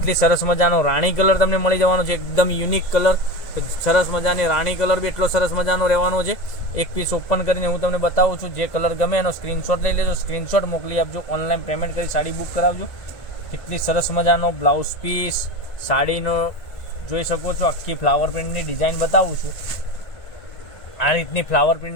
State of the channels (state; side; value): late; right; 1.7 ms